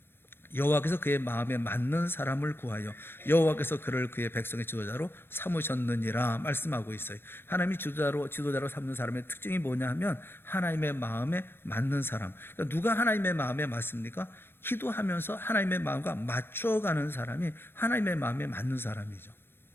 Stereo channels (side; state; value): right; late; 0.10 ms